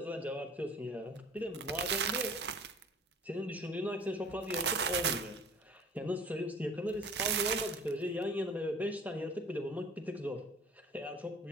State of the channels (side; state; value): both; normal; correlation 0.47